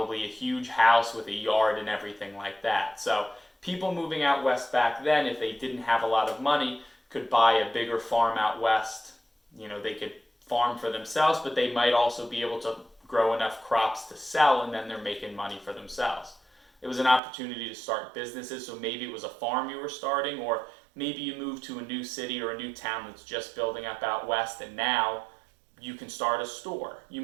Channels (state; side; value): drops out; left; at 17.2 s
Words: a huge house with a yard and everything like that. So people moving out west back then, if they didn't have a lot of money, could buy a bigger farm out west. They could farm for themselves, but they might also be able to grow enough crops to sell, and then they're making money for themselves. It was an opportunity to start businesses, so maybe it was a farm you were starting, or maybe you moved to a new city or a new town that's just building up out west, and now you can start a store. You